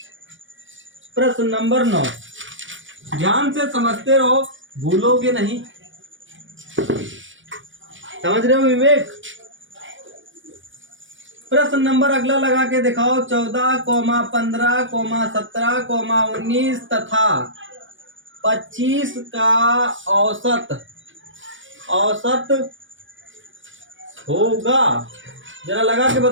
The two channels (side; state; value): left; late; 0.56 ms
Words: प्रश्न नंबर 9, ध्यान से समझते रहो, भूलोगे नहीं। समझ रहे हो विवेक? प्रश्न नंबर अगला लगा के दिखाओ। 14, 15, 17, 19 तथा 25 का औसत होगा। जरा लगा के